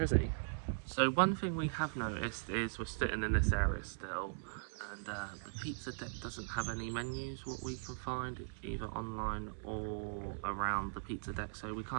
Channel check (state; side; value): silent; left; digital silence